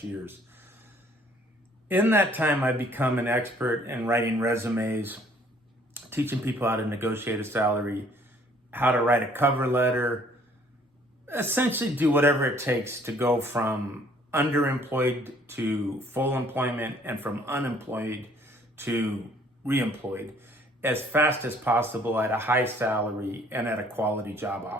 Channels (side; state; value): both; normal; correlation 0.60